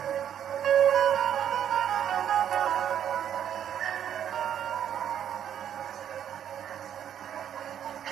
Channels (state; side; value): quieter; left; 9.6 dB